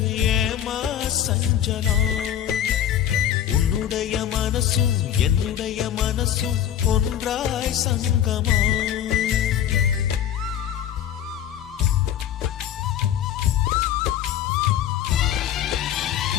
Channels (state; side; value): quieter; right; 10.4 dB